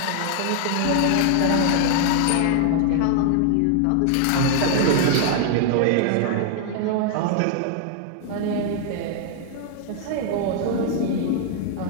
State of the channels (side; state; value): both; different; correlation 0.00